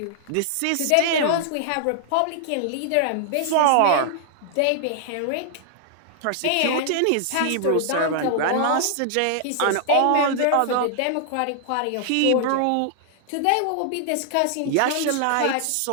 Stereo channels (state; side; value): different; both; correlation 0.00